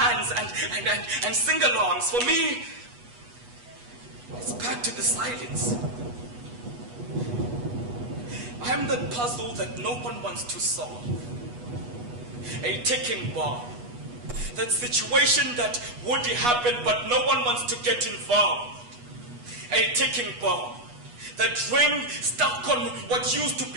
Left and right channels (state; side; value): late; left; 8.2 ms